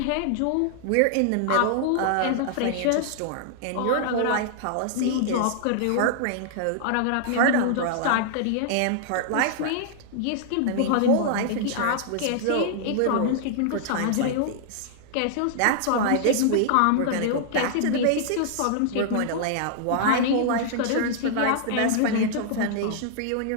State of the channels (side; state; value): both; different; correlation -0.01